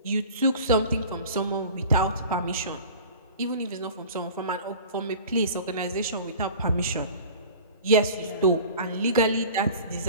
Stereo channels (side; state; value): both; inverted; correlation -0.41